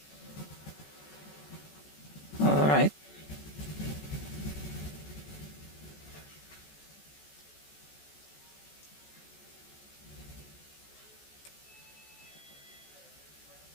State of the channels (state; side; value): late; right; 14 ms